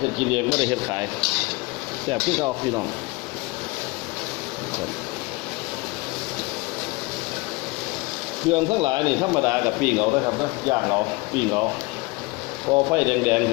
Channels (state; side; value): quieter; right; 24.6 dB